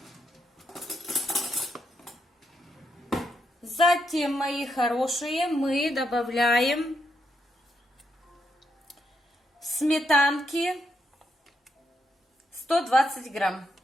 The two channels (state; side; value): normal; both; correlation 0.79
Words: мои хорошие, мы добавляем сметанки 120 грамм.